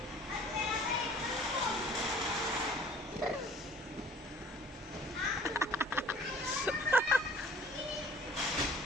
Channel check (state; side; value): normal; both; correlation 0.51